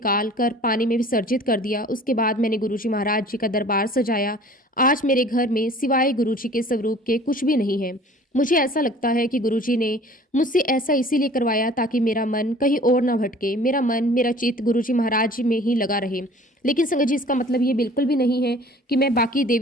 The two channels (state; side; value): normal; both; correlation 0.48